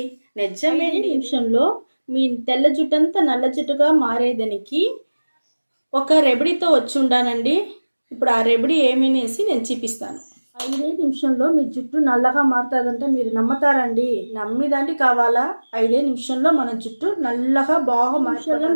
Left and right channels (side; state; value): both; inverted; correlation -1.00